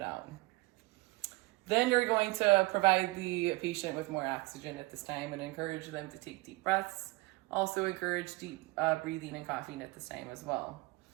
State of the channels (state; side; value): quieter; left; 22.8 dB